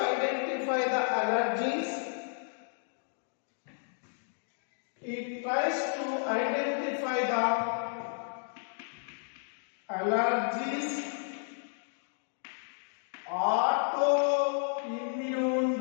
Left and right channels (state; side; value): silent; right; digital silence